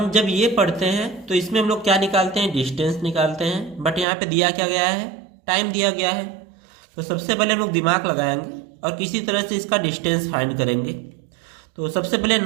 जब ये पढ़ते हैं तो इसमें हम लोग क्या निकालते हैं? डिस्टेंस निकालते हैं, बट यहाँ पे दिया क्या गया है? टाइम दिया गया है। तो सबसे पहले हम लोग दिमाग लगाएंगे और किसी तरह से इसका डिस्टेंस फाइंड करेंगे। तो सबसे पहले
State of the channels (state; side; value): drops out; left; at 4.0 s